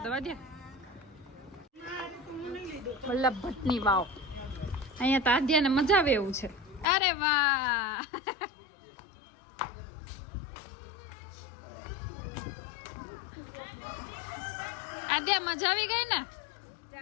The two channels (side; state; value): right; drops out; at 6.9 s